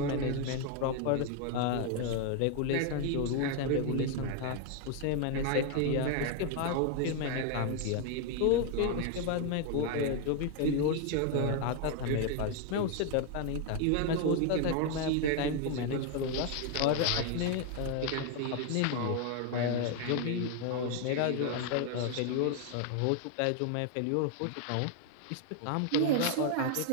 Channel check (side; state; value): both; different; correlation 0.01